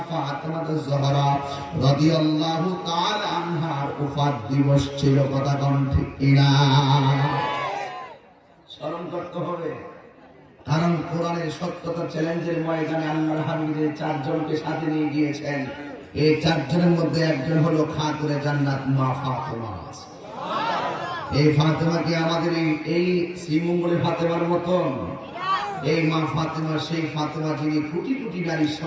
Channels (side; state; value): both; identical; correlation 1.00